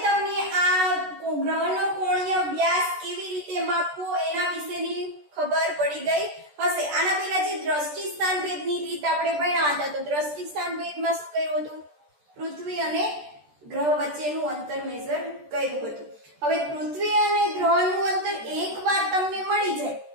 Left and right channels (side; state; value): left; late; 14 ms